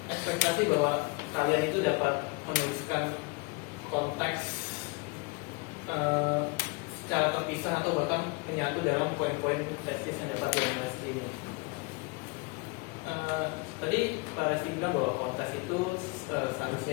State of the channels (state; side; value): quieter; right; 28.6 dB